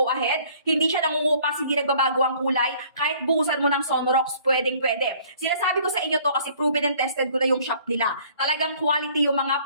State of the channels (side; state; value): both; inverted; correlation -0.56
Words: ahead. Hindi siya nangungupas, hindi nagbabago ang kulay. Kahit buhusan mo ng Sonrox, pwedeng-pwede. Sinasabi ko sa inyo to kasi proven and tested ko na yung shop nila. Talagang quality yung mga